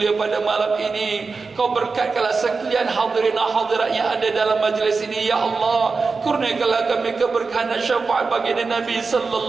pada malam ini, Kau berkatkanlah sekalian hadirin hadirat yang ada dalam majlis ini ya Allah. Kurniakanlah kami keberkahan dan syafaat baginda Nabi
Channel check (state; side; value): quieter; left; 4.4 dB